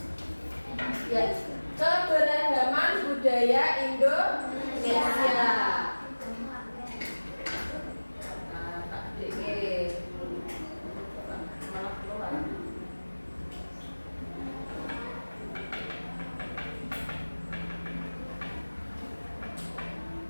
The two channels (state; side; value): inverted; both; correlation -1.00